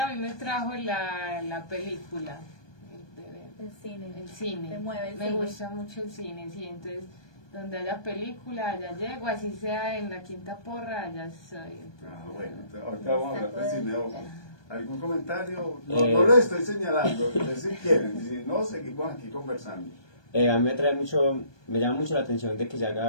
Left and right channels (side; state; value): right; late; 1.2 ms